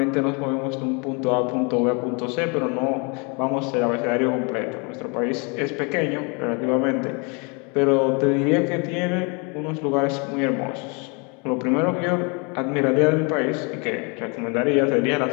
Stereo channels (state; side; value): quieter; right; 32.6 dB